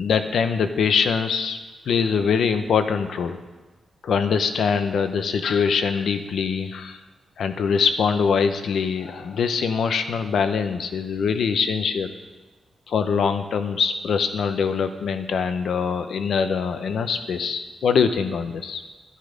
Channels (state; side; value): quieter; right; 5.8 dB